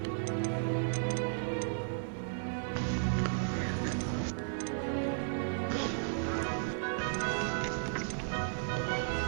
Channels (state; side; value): silent; left; digital silence